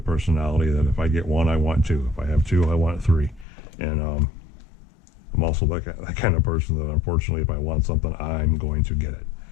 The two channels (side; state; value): right; drops out; at 3.5 s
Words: personality that if I get one, I want two. If I have two, I want three. And I'm also that kind of person that, unfortunately, if I want something, I'm going to get it.